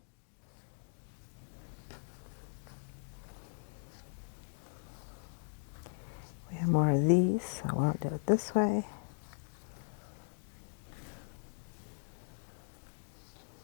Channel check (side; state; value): right; silent; digital silence